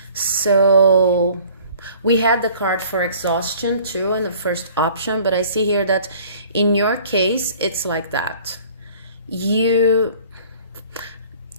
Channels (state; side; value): inverted; both; correlation -0.51